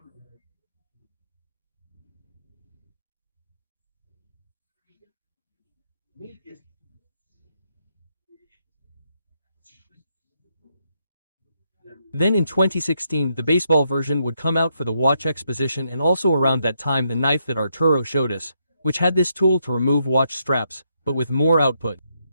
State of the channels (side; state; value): both; inverted; correlation -0.78